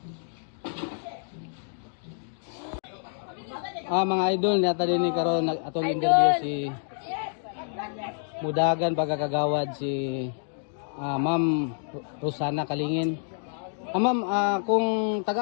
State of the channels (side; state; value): right; silent; digital silence